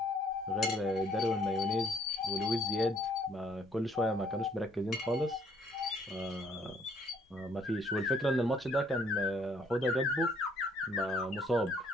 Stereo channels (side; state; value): both; normal; correlation 0.64